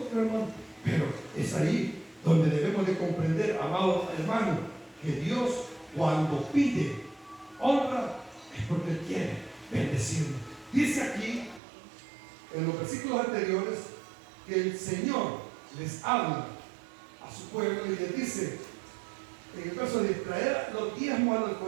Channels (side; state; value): left; drops out; at 11.6 s